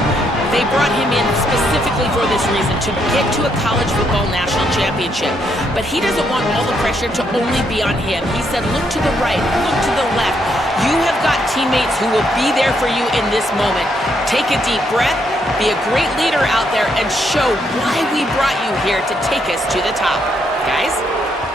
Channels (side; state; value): both; normal; correlation 0.75